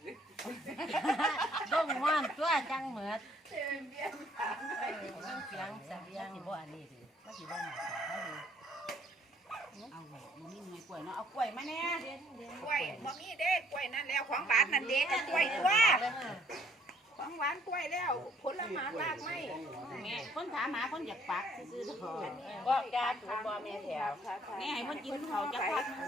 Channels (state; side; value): normal; both; correlation 0.62